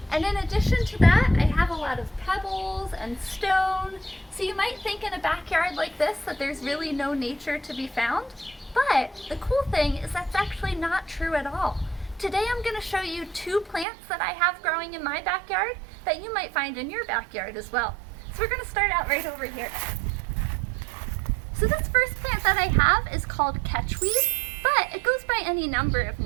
And in addition to that, I have a lot of pebbles and stone. So you might think in a backyard like this that there's really no nature to be found. But the cool thing is that's actually not true at all. Today I'm going to show you two plants that I have growing in my backyard that you might find in your backyard as well. So we're going to start out right over here. So this first plant that I have is called catchweed, but it goes by any number of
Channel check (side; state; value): left; drops out; at 13.9 s